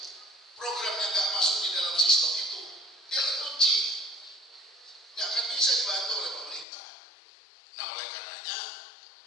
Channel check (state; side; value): drops out; right; at 6.7 s